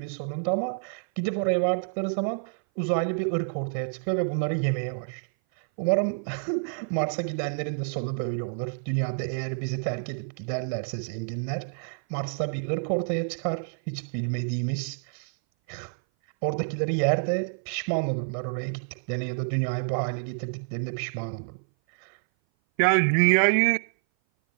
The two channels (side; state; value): left; silent; 57 dB below the other